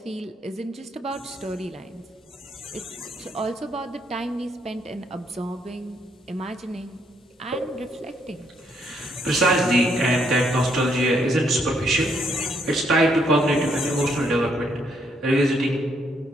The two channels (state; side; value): normal; both; correlation 0.72